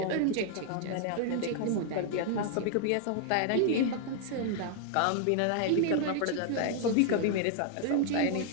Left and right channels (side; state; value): both; different; correlation 0.00